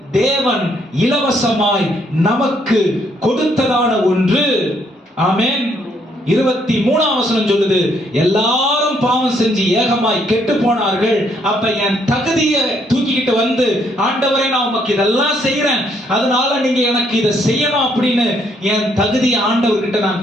தேவன் இலவசமாய் நமக்கு கொடுத்ததான ஒன்று. ஆமென். 23ஆம் வசனம் சொல்லுது, எல்லாரும் பாவம் செஞ்சு ஏகமாய் கெட்டு போனார்கள். அப்ப என் தகுதியை தூக்கிக்கிட்டு ஆண்டவரே, நான் உமக்கு இதெல்லாம் செய்யறேன், அதனால நீங்க எனக்கு இதை செய்யணும் அப்படின்னு என் தகுதியை ஆண்டவர்கிட்ட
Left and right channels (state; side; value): normal; both; correlation 0.70